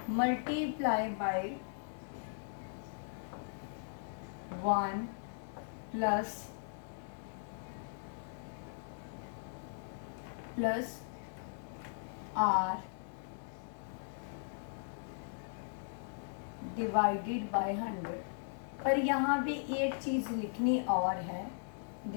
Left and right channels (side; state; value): right; silent; digital silence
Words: multiply by 1 plus R divided by 100. पर यहाँ भी एक चीज लिखनी और है.